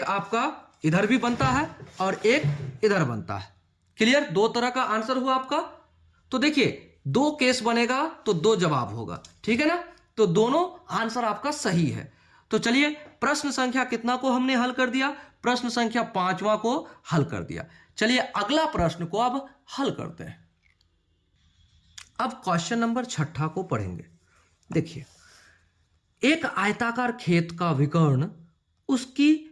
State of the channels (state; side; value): identical; both; correlation 1.00